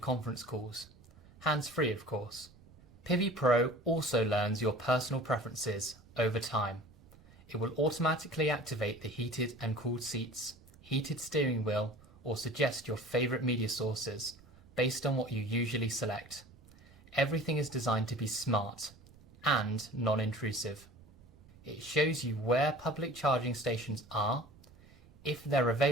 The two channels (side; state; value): right; noise; rumble, 24 dB below the sound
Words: calls. Hands-free, of course. PHEV Pro also learns your personal preferences over time. It will automatically activate the heated and cooled seats, heated steering wheel, or suggest your favourite media sources based on what you usually select. Everything is designed to be smart and non-intrusive. It shows you where public charging stations are, if they're